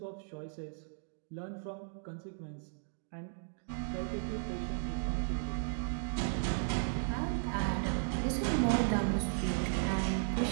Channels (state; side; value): silent; left; digital silence